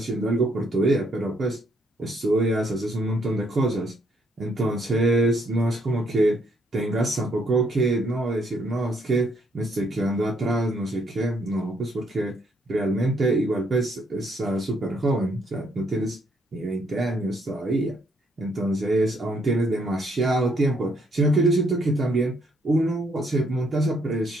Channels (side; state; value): both; normal; correlation 0.70